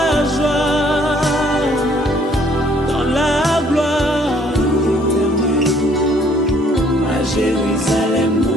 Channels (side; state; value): both; normal; correlation 0.62